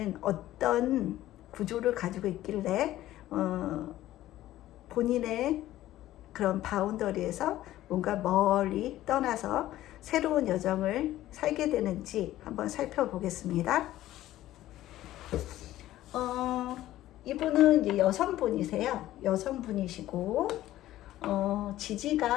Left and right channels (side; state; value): right; quieter; 14.5 dB